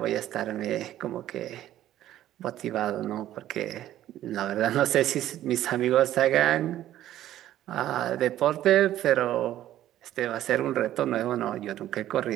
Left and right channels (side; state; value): left; quieter; 13.0 dB